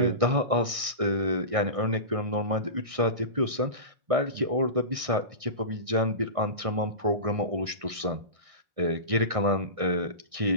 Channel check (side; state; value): left; late; 1.6 ms